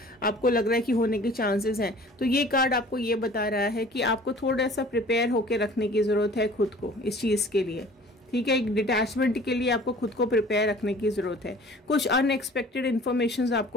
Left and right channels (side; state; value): both; normal; correlation 0.48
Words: आपको लग रहा है कि होने के चांसेस हैं, तो ये कार्ड आपको ये बता रहा है कि आपको थोड़ा सा प्रिपेयर होके रखने की जरूरत है खुद को इस चीज के लिए, ठीक है। एक डिटैचमेंट के लिए आपको खुद को प्रिपेयर रखने की जरूरत है। कुछ अनएक्सपेक्टेड इन्फॉर्मेशन